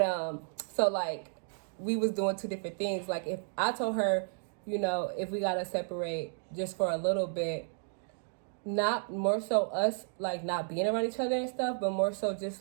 so like we was doing two different things. Like if I told her, you know, if we gotta separate just for a little bit, not more so us like not being around each other and stuff, but more so just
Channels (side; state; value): left; silent; digital silence